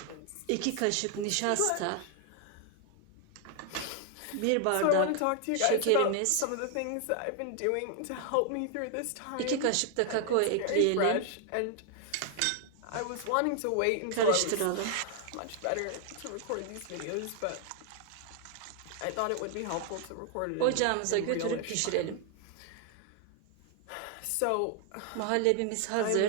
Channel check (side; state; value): both; different; correlation 0.00